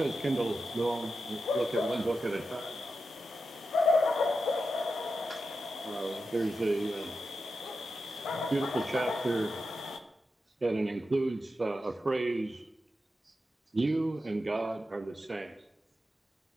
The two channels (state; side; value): normal; both; correlation 0.89